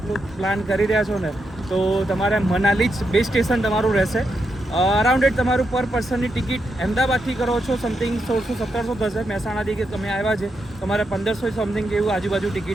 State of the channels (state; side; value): normal; both; correlation 0.83